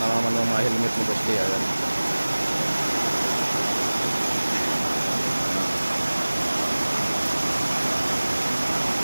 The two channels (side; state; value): both; inverted; correlation -1.00